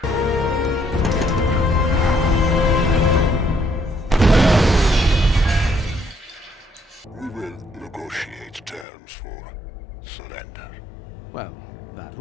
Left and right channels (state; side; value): drops out; right; at 8.8 s